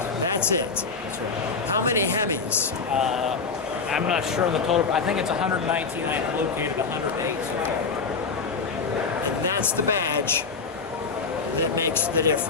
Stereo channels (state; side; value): quieter; right; 4.9 dB